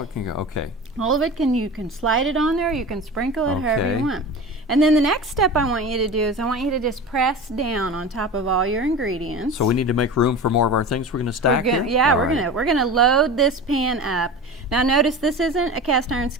it can go, okay. All of it, you can slide it on there. You can sprinkle it however you want. And then the next step I want you to do is I want you to just press down on top of all your ingredients. So we need to make room for more of our things we're going to stack here? Yeah, we're gonna load this pan up. Now notice this isn't a cast iron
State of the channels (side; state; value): both; normal; correlation 0.31